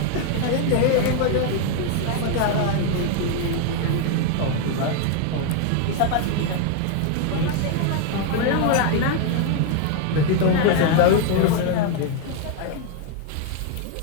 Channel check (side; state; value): both; different; correlation 0.01